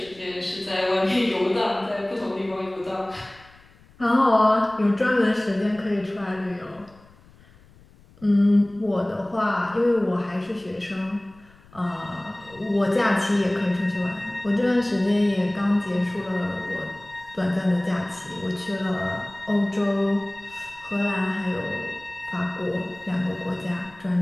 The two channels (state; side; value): noise; left; rumble, 26 dB below the sound